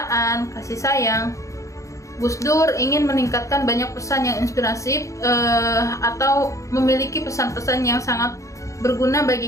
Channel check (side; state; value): right; late; 0.15 ms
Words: kasih sayang. Gus Dur ingin meningkatkan banyak pesan yang inspiratif atau memiliki pesan-pesan yang sangat berguna